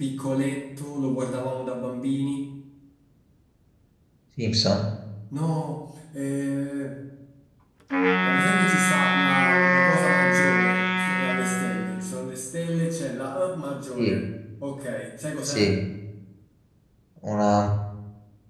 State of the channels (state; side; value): identical; both; correlation 1.00